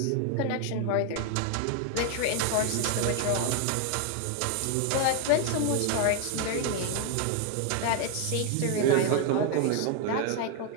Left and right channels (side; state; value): both; different; correlation 0.01